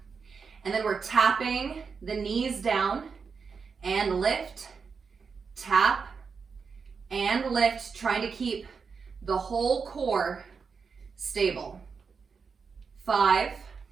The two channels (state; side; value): quieter; left; 5.5 dB